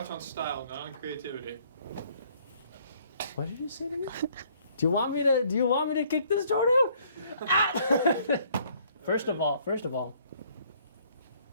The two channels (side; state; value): both; inverted; correlation -0.62